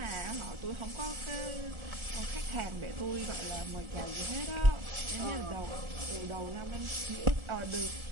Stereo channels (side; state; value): left; late; 1.4 ms